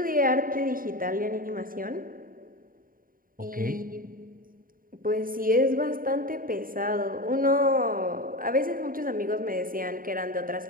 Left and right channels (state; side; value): late; left; 0.41 ms